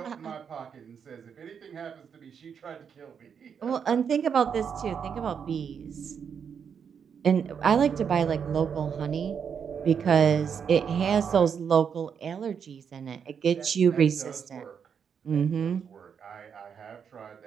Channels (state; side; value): quieter; left; 7.1 dB